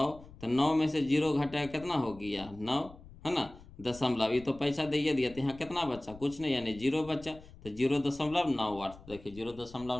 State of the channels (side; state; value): left; noise; rumble, 19 dB below the sound